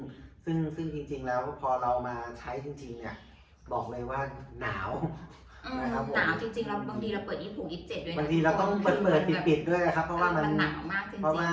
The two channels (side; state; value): both; identical; correlation 1.00